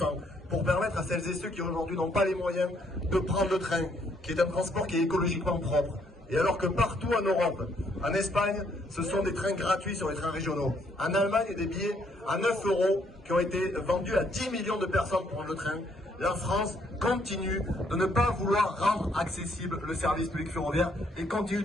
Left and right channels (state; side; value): normal; both; correlation 0.69